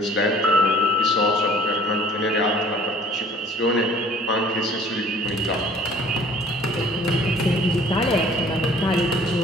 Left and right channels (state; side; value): normal; both; correlation 0.52